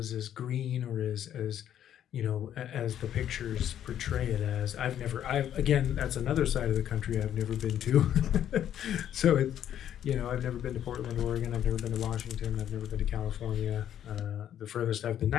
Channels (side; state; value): right; quieter; 10.5 dB